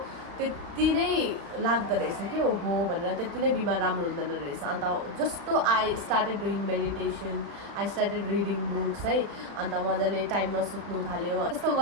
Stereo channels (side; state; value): left; late; 35 ms